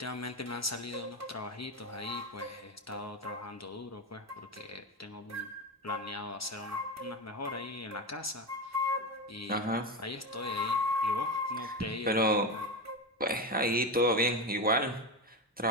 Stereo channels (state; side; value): normal; both; correlation 0.17